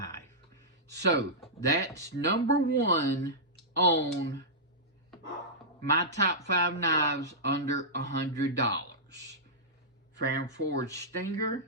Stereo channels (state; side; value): normal; both; correlation -0.13